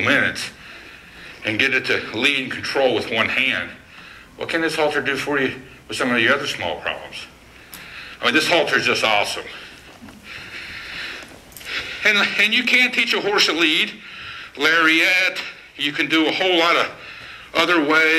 and get it to lead and control with one hand, what can this halter do for you with some of your other small problems? I mean, this halter is just awesome. And you can teach a horse to lead, lariat. You can do a whole lot of other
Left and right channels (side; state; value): both; identical; correlation 1.00